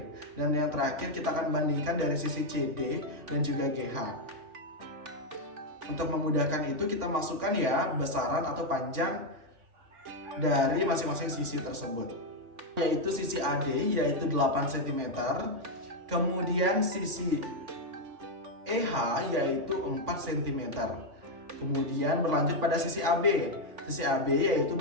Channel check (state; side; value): late; left; 3.5 ms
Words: Dan yang terakhir kita akan bandingkan dari sisi CD dan juga GH. Untuk memudahkan itu kita masukkan ya besaran atau panjang dari masing-masing sisi tersebut, yaitu sisi AD yaitu 8 cm, kemudian sisi EH yaitu 4 cm, kemudian berlanjut pada sisi AB. Sisi AB yaitu